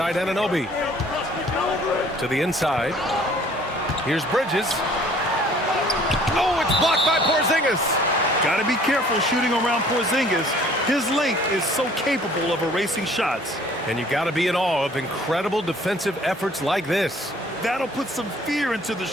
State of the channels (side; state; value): both; normal; correlation 0.55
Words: Anunoby. To the inside. Here's Bridges. Oh, it's blocked by Porzingis. Got to be careful shooting around Porzingis. His length is so capable of erasing shots. And you got to be in awe of incredible defensive efforts like this. That'll put some fear into the